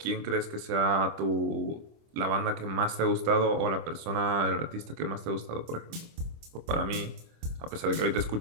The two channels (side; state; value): left; late; 25 ms